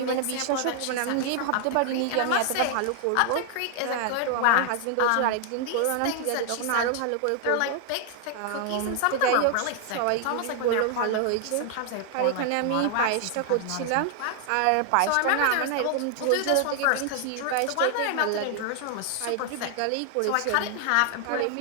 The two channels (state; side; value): different; both; correlation 0.00